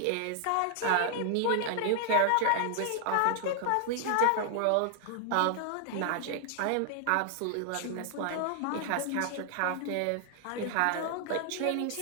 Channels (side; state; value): both; different; correlation 0.00